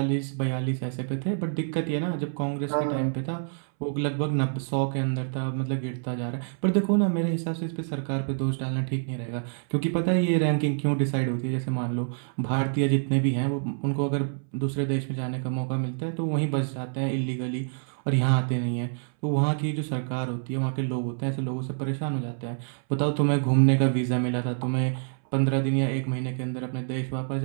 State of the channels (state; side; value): silent; left; 60 dB below the other